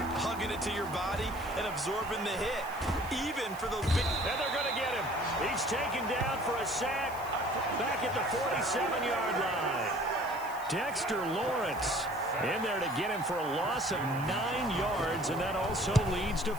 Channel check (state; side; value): noise; right; hiss, 18 dB below the sound